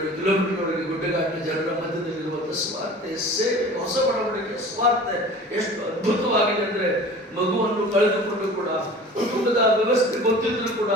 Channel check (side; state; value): both; normal; correlation 0.41